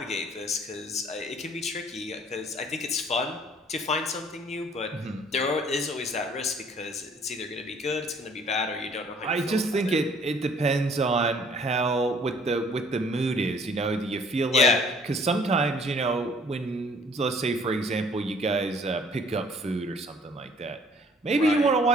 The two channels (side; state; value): both; normal; correlation 0.57